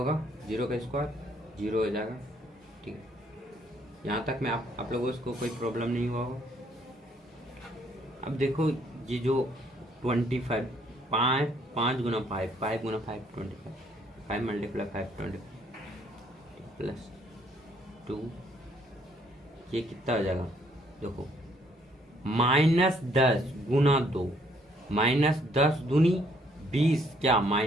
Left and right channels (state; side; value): normal; both; correlation 0.66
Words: 0 का स्क्वायर 0 हो जाएगा, ठीक है। यहाँ तक में आप लोगों को कोई प्रॉब्लम नहीं हुआ होगा। अब देखो ये जो 25 5 गुना 5 5 गुना 5 25, 5 मल्टीप्लाई 5 25 प्लस 2, ये कितना हो जाएगा, देखो -10 गुना 2, -10 दूनी 20, क्या